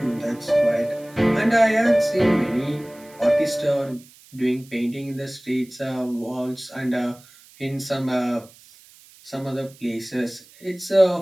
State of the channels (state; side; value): noise; right; hiss, 25 dB below the sound